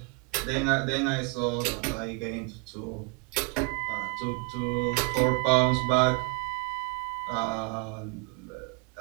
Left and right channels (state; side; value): quieter; left; 31.3 dB